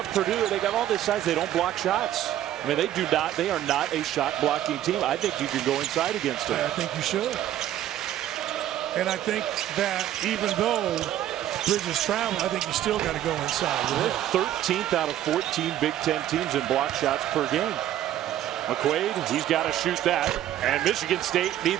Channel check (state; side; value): quieter; left; 12.2 dB